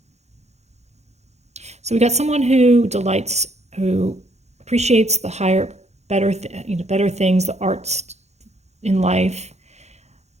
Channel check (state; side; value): late; left; 0.32 ms